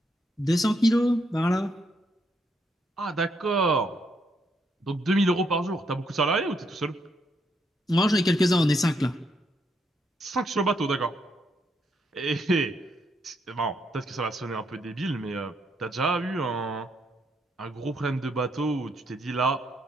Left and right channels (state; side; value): normal; both; correlation 0.76